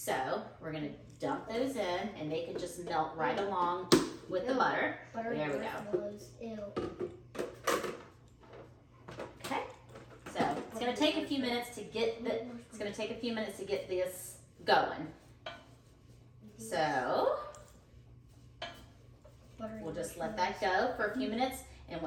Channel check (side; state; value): both; identical; correlation 1.00